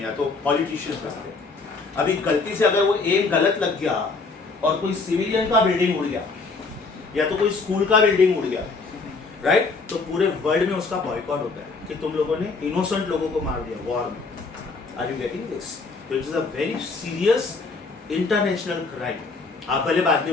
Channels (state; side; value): quieter; right; 4.1 dB